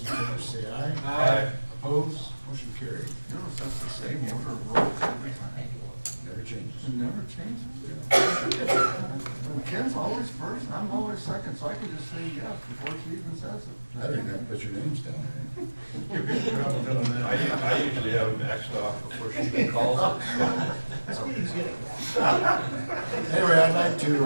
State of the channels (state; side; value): inverted; both; correlation -1.00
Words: favor say aye. Aye. Opposed? Motion carried. Notice that's the same order of roll every time. Never changes. It never changes. Ken's always first, and I'm always second, so I can just say yes before she even says it. I don't even have to put your names down there. I usually have it maxed off before she even calls it. Anyway, I'd like to